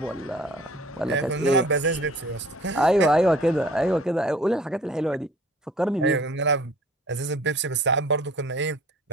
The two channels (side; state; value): both; normal; correlation 0.50